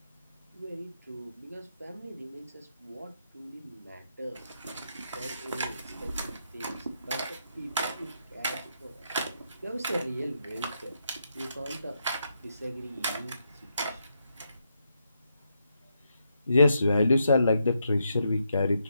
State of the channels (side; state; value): both; inverted; correlation -0.80